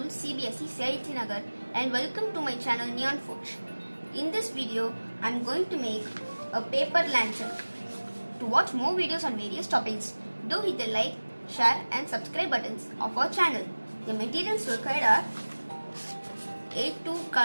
CBSE Saiti Nagar and welcome to my channel Neon Forge. In this video, I am going to make a paper lantern. To watch more videos on various topics, do hit the like, share and subscribe buttons of our channel. The materials required are A2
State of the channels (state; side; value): inverted; both; correlation -1.00